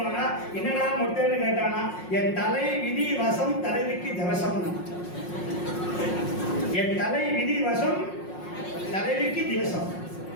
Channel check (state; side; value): late; right; 5.5 ms